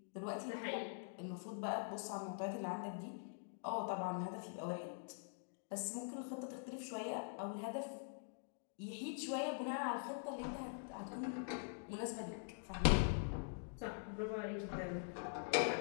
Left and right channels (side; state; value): right; silent; digital silence